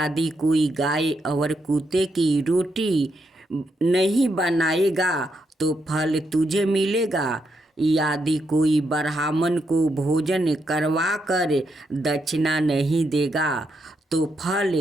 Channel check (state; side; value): normal; both; correlation 0.81